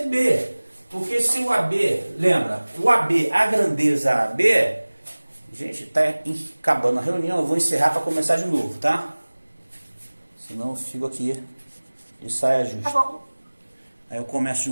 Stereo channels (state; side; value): inverted; both; correlation -1.00